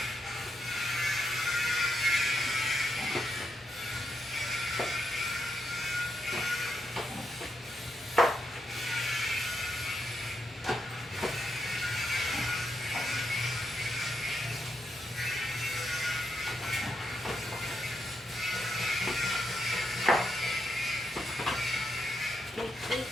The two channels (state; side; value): normal; both; correlation 0.82